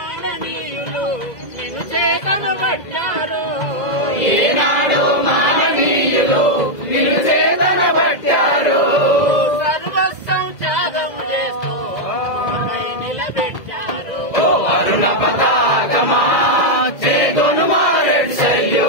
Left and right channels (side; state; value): right; late; 2.0 ms